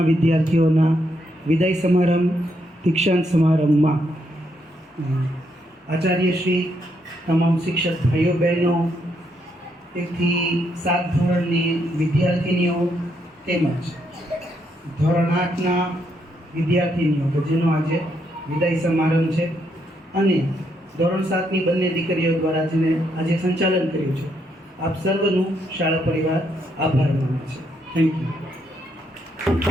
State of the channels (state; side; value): normal; both; correlation 0.76